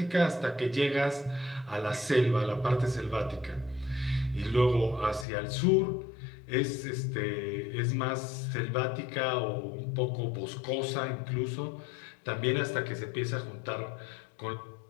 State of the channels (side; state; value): right; drops out; at 5.2 s